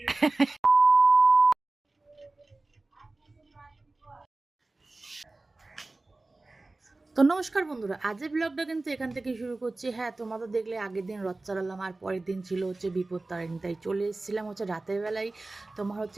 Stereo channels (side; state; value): left; quieter; 3.1 dB